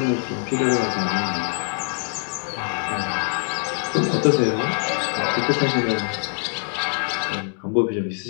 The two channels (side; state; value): right; silent; digital silence